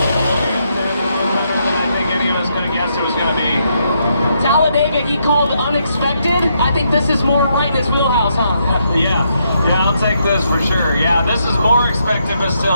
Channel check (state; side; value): inverted; both; correlation -0.77